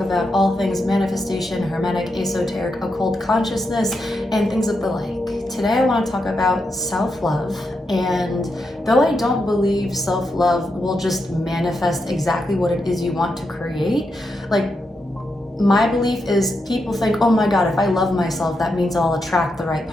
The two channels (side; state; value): both; normal; correlation 0.85